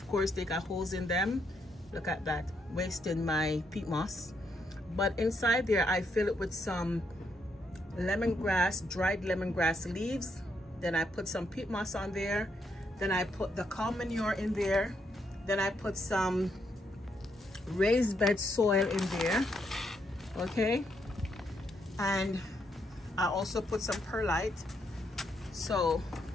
course they got holes in them. Look at that, wasting my peat moss. But inside there I fill it with some lemongrass, dried lemongrass leaves. Then I put some peat moss on there. Then I put the cow manure in there. Then I put some raised bed soil in there. Okay. And I also put some perlite. So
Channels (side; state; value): both; normal; correlation 0.77